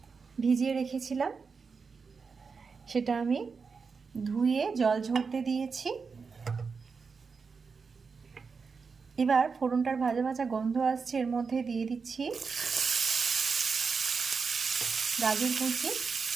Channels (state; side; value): quieter; left; 5.1 dB